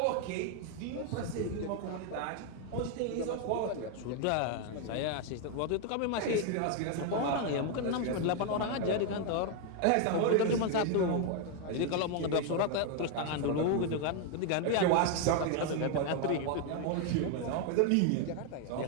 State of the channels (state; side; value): different; both; correlation 0.01